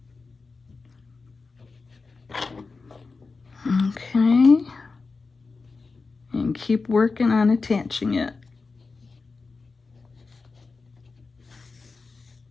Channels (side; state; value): right; quieter; 4.2 dB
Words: okay, and keep working on attaching it.